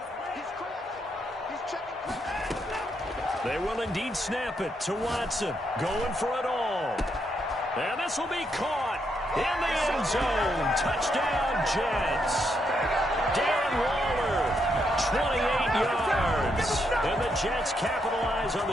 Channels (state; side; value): normal; both; correlation 0.78